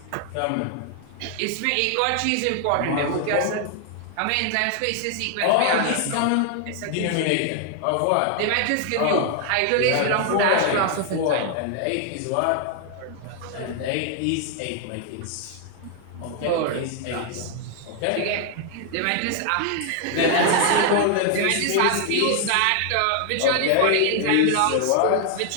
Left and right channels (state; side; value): different; both; correlation 0.00